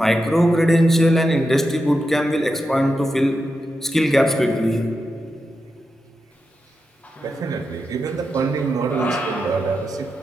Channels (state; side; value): normal; both; correlation 0.88